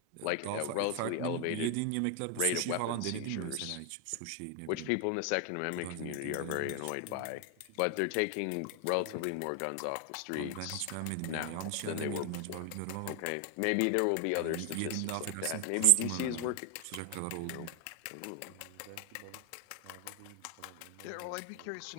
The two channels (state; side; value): different; both; correlation 0.00